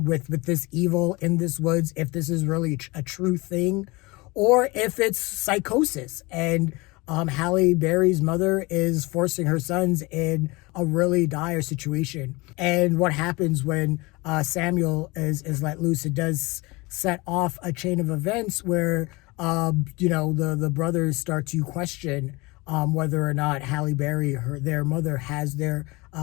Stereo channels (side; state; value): right; quieter; 24.2 dB